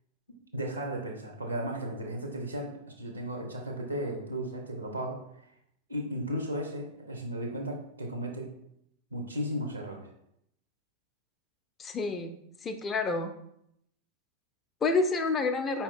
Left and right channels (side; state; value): both; normal; correlation -0.01